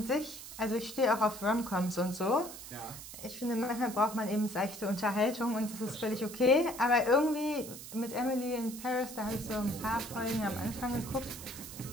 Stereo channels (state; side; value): noise; right; hiss, 12 dB below the sound